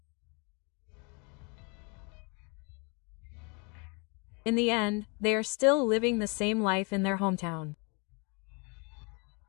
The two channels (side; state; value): right; quieter; 32.2 dB